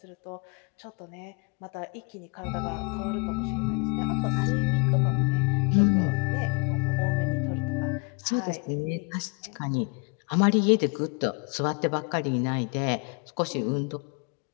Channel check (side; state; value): right; quieter; 34.6 dB